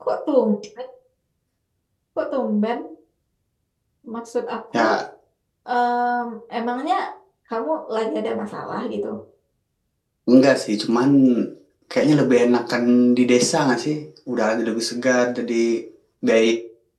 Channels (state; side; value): identical; both; correlation 1.00